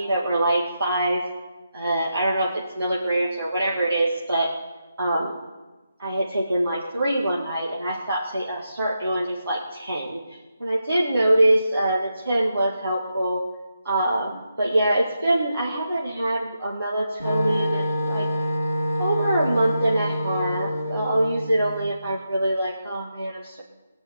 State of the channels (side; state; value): both; inverted; correlation -0.85